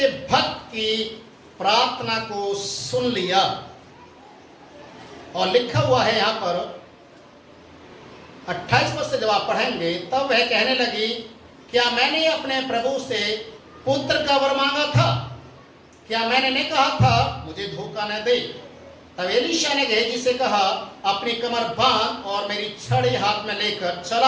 भक्त की प्रार्थना को सुन लिया। और लिखा हुआ है यहां पर 28 पद से जब आप पढ़ेंगे, तब वह कहने लगी, क्या मैंने अपने प्रभु से पुत्र का वर मांगा था? क्या मैंने नहीं कहा था मुझे धोखा न दे? तब एलीशा ने गेहजी से कहा, अपनी कमर बांध और मेरी छड़ी हाथ में लेकर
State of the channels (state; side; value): identical; both; correlation 1.00